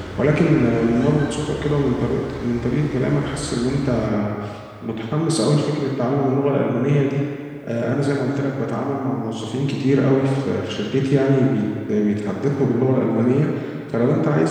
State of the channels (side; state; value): both; identical; correlation 1.00